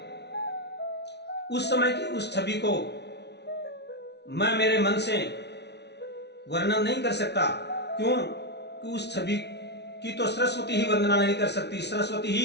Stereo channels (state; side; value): late; right; 0.50 ms